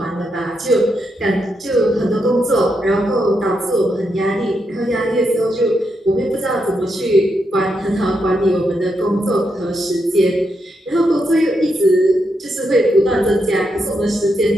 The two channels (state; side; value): normal; both; correlation 0.82